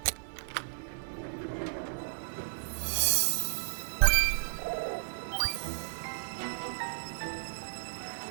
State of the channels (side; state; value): left; silent; 55 dB below the other